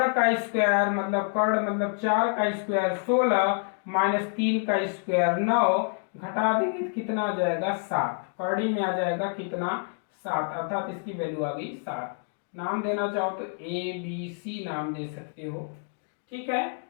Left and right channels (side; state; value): right; silent; 57 dB below the other